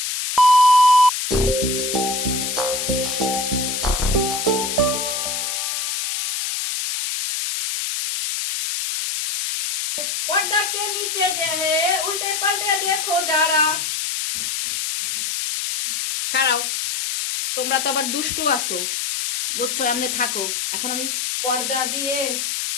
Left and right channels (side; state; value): left; noise; hiss, 2 dB below the sound